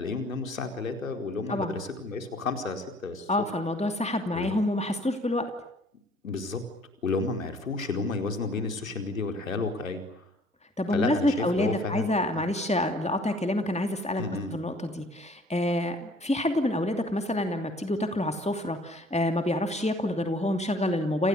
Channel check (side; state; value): both; normal; correlation 0.56